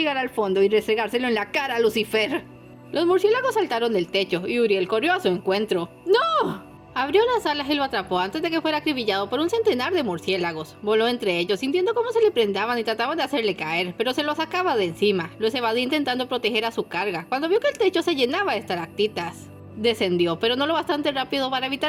al fondo y restregárselo en la cara a Lucifer. Los murciélagos saltaron del techo y Uriel corrió a su encuentro. ¡No! Abrió las alas y lo atrapó antes de que fuera acribillado por un centenar de murciélagos. Voló entre ellos, sintiendo cómo se le prendaban y trataban de hacerle caer, pero se los sacaba de encima. Los evadía intentando proteger a su carga, cuando vio que el techo se llenaba de estalactitas. Descendió, pero no lo bastante rápido para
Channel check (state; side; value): identical; both; correlation 1.00